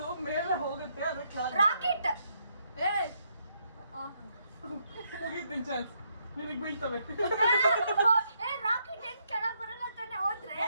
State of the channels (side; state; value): both; inverted; correlation -0.76